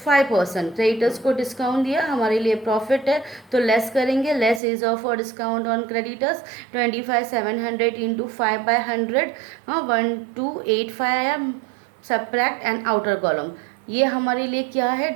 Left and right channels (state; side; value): drops out; left; at 4.6 s